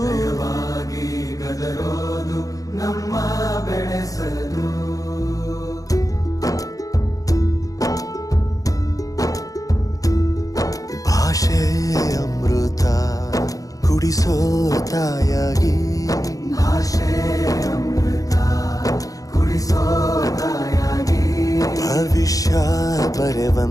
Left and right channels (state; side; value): late; right; 0.17 ms